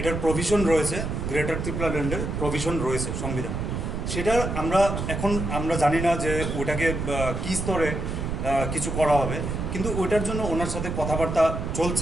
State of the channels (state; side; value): noise; right; rumble, 3 dB below the sound